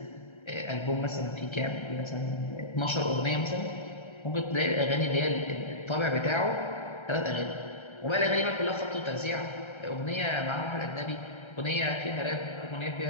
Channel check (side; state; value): right; late; 1.3 ms